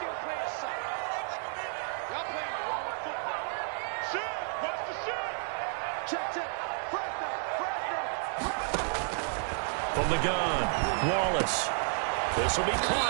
From the gun, Wallace. This will be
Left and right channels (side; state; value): left; silent; 57 dB below the other